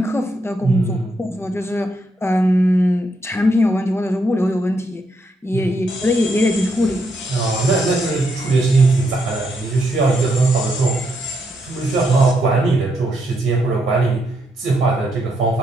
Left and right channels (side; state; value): both; normal; correlation 0.78